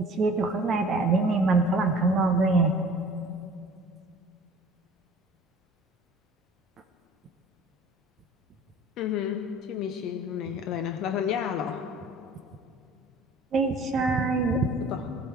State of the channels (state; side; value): normal; both; correlation 0.47